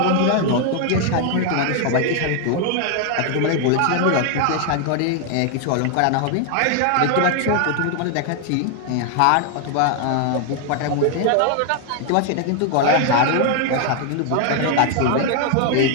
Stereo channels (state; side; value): different; both; correlation 0.01